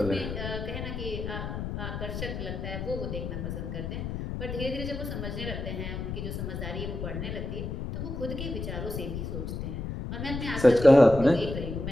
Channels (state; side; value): noise; left; rumble, 5 dB below the sound